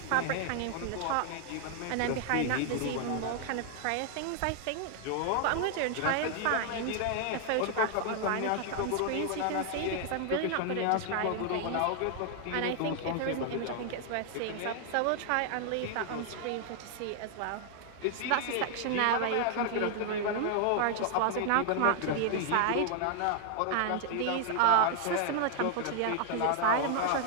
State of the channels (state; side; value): different; both; correlation 0.00